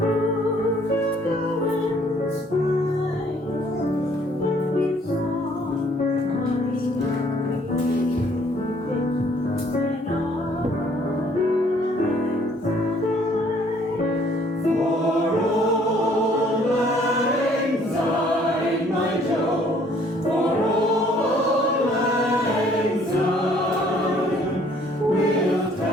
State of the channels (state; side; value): normal; both; correlation 0.61